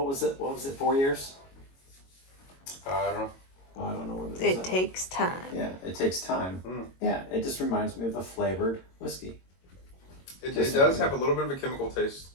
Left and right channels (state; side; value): late; right; 22 ms